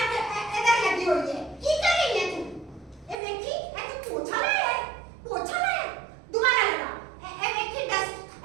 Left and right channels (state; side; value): drops out; left; at 3.2 s